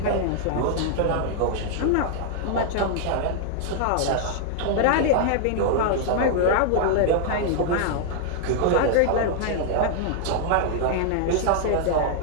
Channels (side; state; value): both; different; correlation -0.01